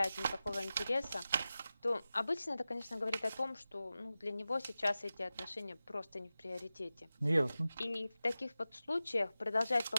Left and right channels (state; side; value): inverted; both; correlation -0.94